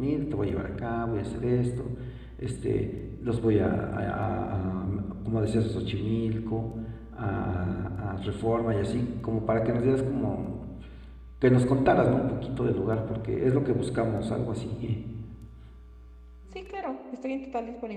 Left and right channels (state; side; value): identical; both; correlation 1.00